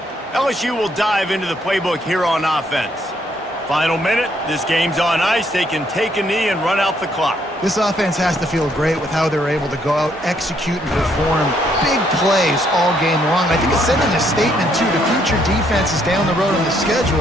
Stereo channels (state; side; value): normal; both; correlation 0.70